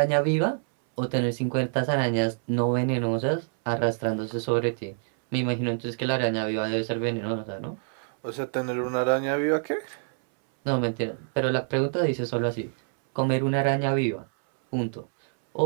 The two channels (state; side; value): silent; left; 61 dB below the other